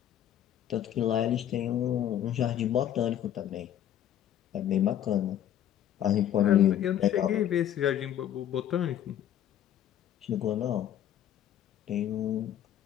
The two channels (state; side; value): quieter; right; 11.0 dB